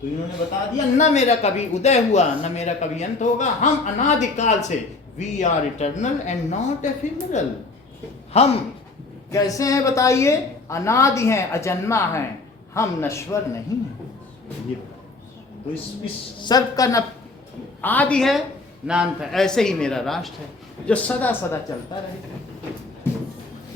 तो इन्होंने बता दिया, न मेरा कभी उदय हुआ न मेरा कभी अंत होगा, हम अनादिकाल से, we are eternal and not ephemeral. हम कैसे हैं बताइए, अनादि हैं, अजन्मा हैं, हम नश्वर नहीं हैं। ये तो इस सर्व का न आदि है न अंत है, ऐसे ही मेरा राष्ट्र है जो सदा सदा चलता रहे।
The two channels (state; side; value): quieter; right; 3.6 dB